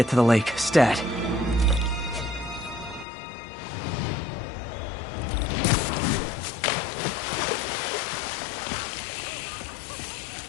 to the lake, stat.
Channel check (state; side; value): drops out; right; at 3.1 s